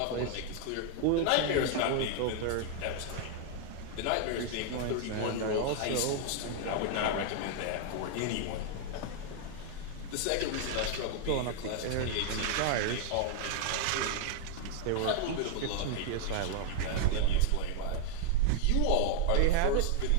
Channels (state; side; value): different; both; correlation 0.00